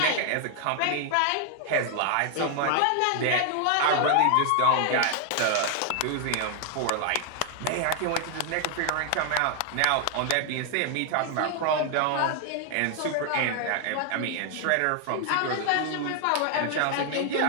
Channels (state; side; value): different; both; correlation 0.00